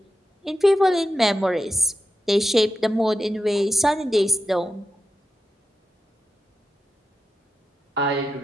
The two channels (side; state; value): both; normal; correlation 0.89